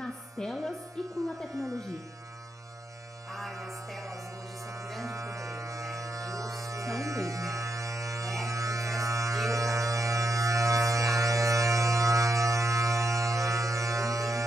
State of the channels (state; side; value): normal; both; correlation 0.83